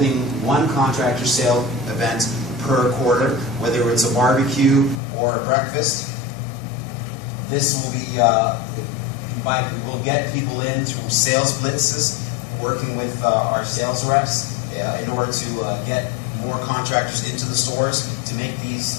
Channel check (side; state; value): right; drops out; at 5.0 s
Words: one contractor sale event per quarter, whether it's a barbecue or a breakfast. This will be, we'll get people in through sales blitzes, working with our sales reps in order to get more contractors into the stores to make